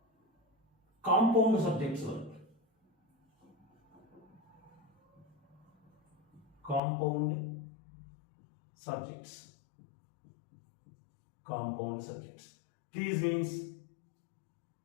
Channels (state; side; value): drops out; right; at 6.8 s